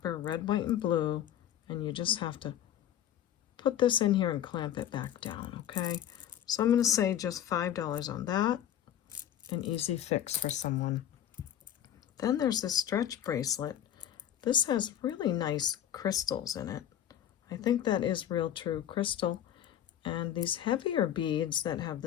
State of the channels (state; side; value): quieter; right; 10.7 dB